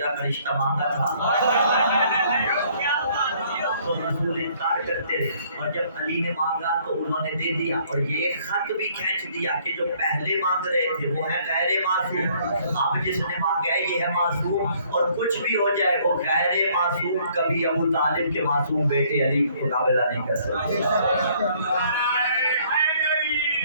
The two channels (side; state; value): both; inverted; correlation -0.62